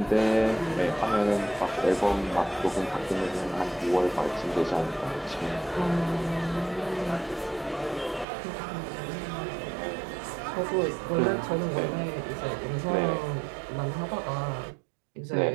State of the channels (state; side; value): drops out; left; at 8.2 s